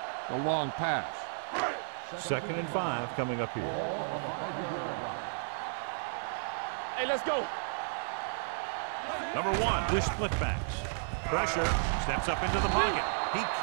the long pass. Second and 5 coming up here. Ball on the 5-yard line. Keep the throttle down. Hey, let's go. Number 1 with split backs. Pressure, steps up into the pocket. He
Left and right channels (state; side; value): silent; left; 56 dB below the other